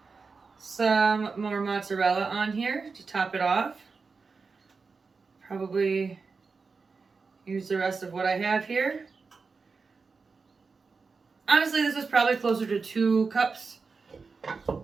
some more mozzarella on here to top it off. Probably use the rest of what I have here. Honestly, this is probably closer to 2 cups.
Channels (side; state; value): left; quieter; 4.6 dB